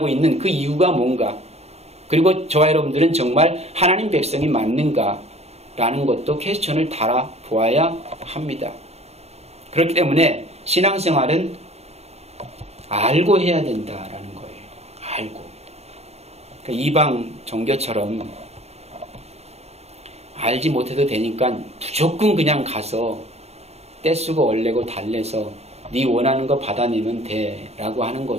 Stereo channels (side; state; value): left; late; 0.31 ms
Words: 있는 그 이유가 뭔가, 그리고 저와 여러분들은 정말 하나님 백성이 맞는가라는 것도 퀘스천을 달아보아야 합니다. 그렇기 때문에 신앙생활은 알고 해야 된다라는 거예요. 알고. 그러니까 이방 종교처럼 알지 못해도 되니까 무조건 그냥 가서 떼쓰고 얼레고 달래서 네 원하는 거 받아내면 돼 라고 하는